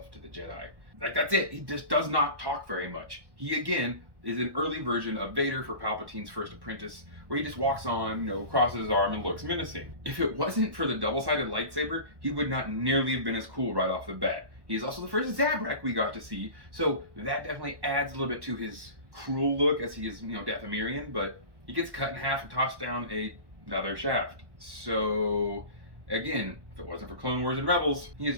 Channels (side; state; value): left; late; 1.1 ms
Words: to the Jedi." Like, that's it. He just does not talk very much. He, again, is an early version of Vader for Palpatine's first apprentice, where he just walks on, crosses his arm and looks menacing. If it wasn't for the double-sided lightsaber, he would not nearly have been as cool right off the bat. He's also the first Zabrak we got to see, so that definitely adds a little bit to his cruel look, as he is, Dathomirian, but he gets cut in half and tossed down another shaft. So, again, if it wasn't for Clone Wars and Rebels, he